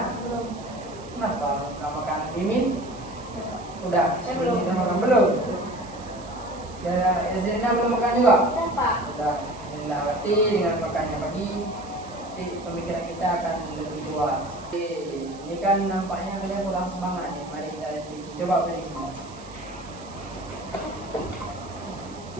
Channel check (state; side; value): noise; right; hiss, 20 dB below the sound